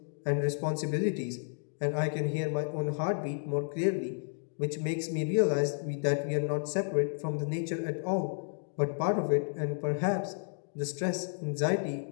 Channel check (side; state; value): right; silent; digital silence